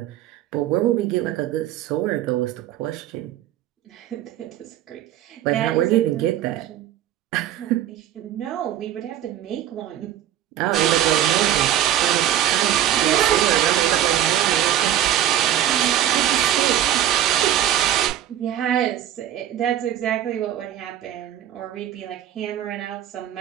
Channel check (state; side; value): quieter; left; 11.7 dB